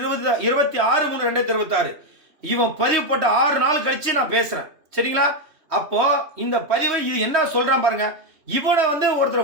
இவன் பதிவு போட்ட 6 நாள் கழிச்சு நான் பேசுறேன். சரிங்களா? அப்போ இந்த பதிவை இது என்ன சொல்றான் பாருங்க. இவனை வந்து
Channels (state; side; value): late; left; 3.1 ms